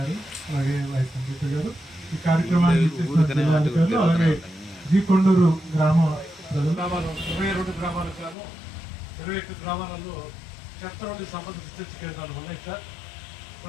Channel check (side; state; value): right; drops out; at 8.3 s